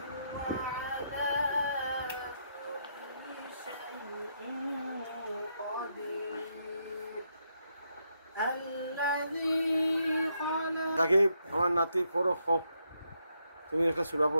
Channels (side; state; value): both; inverted; correlation -0.78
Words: তাকে আমার নাতি পড়ো খো তুমি একটা সূরা